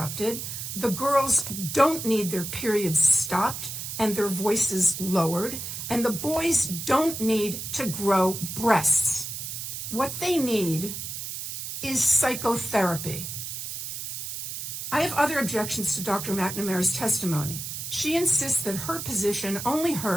the girls don't need their periods stopped and their voices lowered, and the boys don't need to grow breasts. What they need is psychotherapy. I have other objections to Dr. McNamara's testimony. She insists that her position, only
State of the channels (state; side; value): noise; right; hiss, 6 dB below the sound